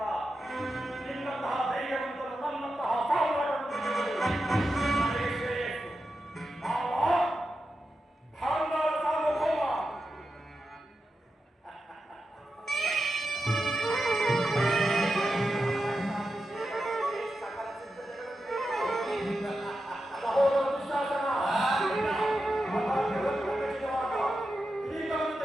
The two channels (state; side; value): normal; both; correlation 0.89